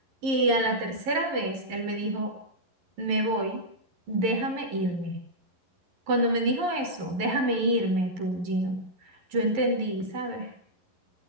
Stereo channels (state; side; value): late; left; 11 ms